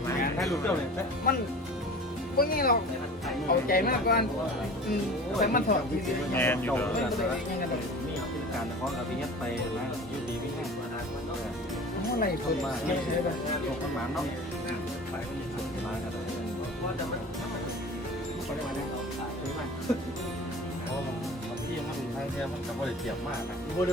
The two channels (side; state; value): both; normal; correlation 0.39